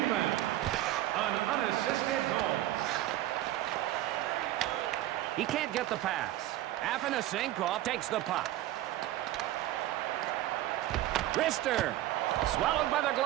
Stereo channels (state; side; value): quieter; left; 14.6 dB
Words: An unassisted goal. He can't get the pass. Afanasenkov takes the puck. Rister. Swallowed by the